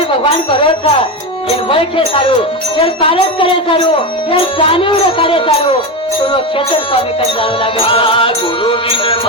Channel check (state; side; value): normal; both; correlation 0.16